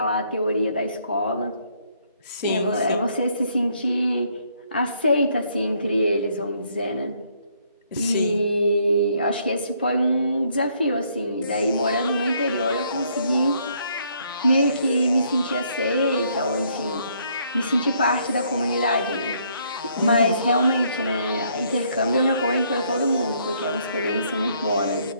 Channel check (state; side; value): inverted; both; correlation -0.68